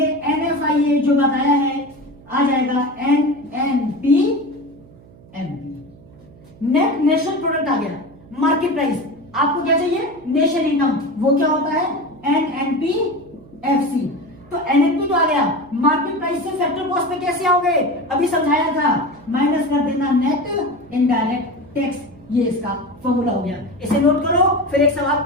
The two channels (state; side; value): noise; right; hum, 23 dB below the sound